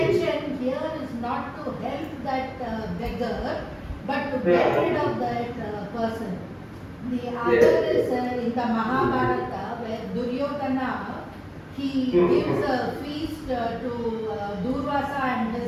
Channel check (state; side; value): identical; both; correlation 1.00